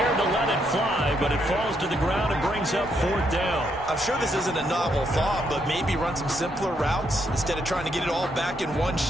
to let it fly, but it falls to the ground and brings up 4th down. I'm sure this isn't a novel thought, but maybe run some simpler routes instead of trying to get it all back in one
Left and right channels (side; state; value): both; normal; correlation 0.76